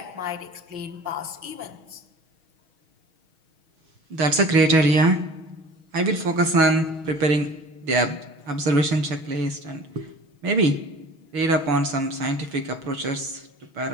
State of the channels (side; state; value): left; late; 6.3 ms